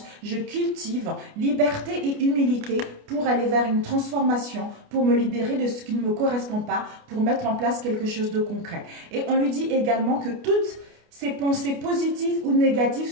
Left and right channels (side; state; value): left; late; 29 ms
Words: je cultive liberté et humilité pour aller vers une transformation, pour me libérer de ce qui ne me correspond pas, pour mettre en place quelque chose de concret. Et on lui dit également que toutes ces pensées positives ou négatives